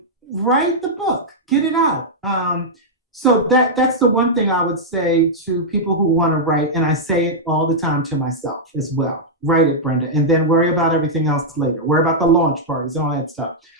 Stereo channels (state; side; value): normal; both; correlation -0.06